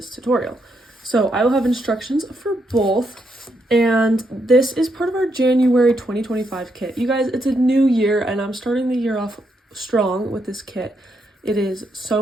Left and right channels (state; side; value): normal; both; correlation 0.79